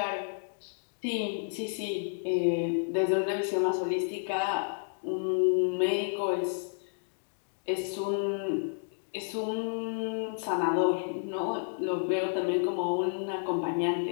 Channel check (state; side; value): silent; right; digital silence